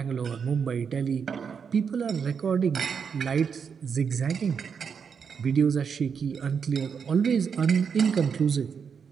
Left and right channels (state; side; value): quieter; left; 6.5 dB